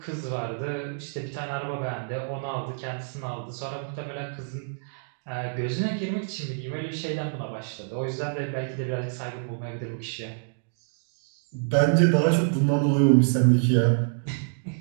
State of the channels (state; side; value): silent; left; digital silence